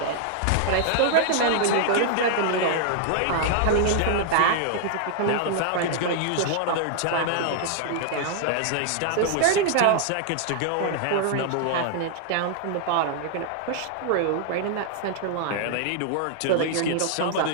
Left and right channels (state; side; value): different; both; correlation -0.01